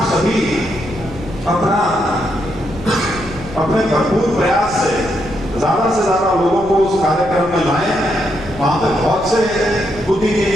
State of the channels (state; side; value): noise; left; rumble, 15 dB below the sound